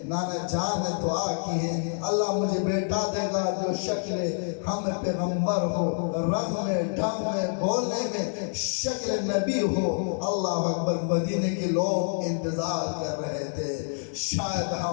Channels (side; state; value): right; silent; 60 dB below the other